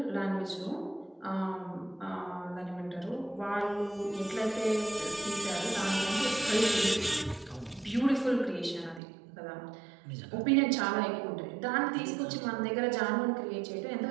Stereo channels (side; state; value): left; drops out; at 9.0 s